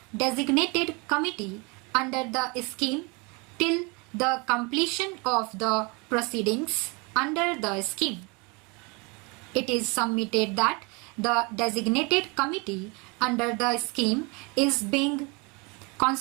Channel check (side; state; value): left; quieter; 29.4 dB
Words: designated committee under the scheme till the completion of the proceedings under the scheme. It is submitted that the designated committee under the scheme is being